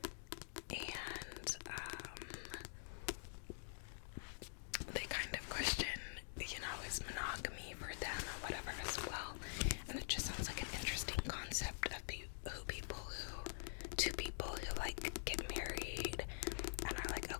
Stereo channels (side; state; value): right; silent; digital silence